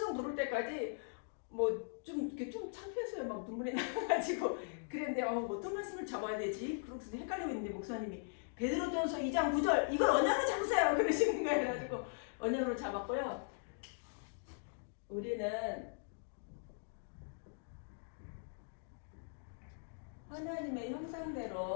부를 때까지 좀 창피했어요. 막 눈물이 나가지고 그랬는데 어떤 말씀을 잡아야 되지? 그러고서 헷갈리고 있는데 목사님이 베드로전서 2장 9절 이걸 언약으로 잡으세요 그러시는 거예요. 그래가지고 언약으로 잡았고요. 우리는 하나님의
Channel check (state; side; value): silent; right; digital silence